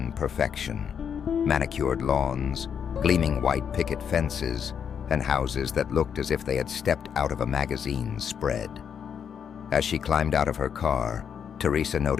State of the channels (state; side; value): quieter; right; 7.6 dB